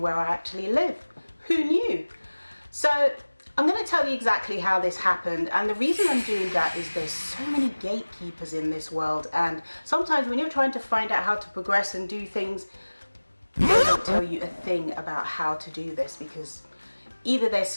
I actually live. Who knew? So I'm going to tell you exactly how this happened, and the reason I'm doing that is there's so many gatekeepers in this world, and sometimes when you're trying to find out how to progress and do things, they don't tell you a thing about how to do this, because either they're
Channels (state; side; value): inverted; both; correlation -1.00